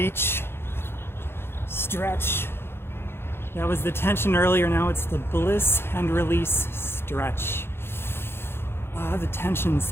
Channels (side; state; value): right; late; 0.11 ms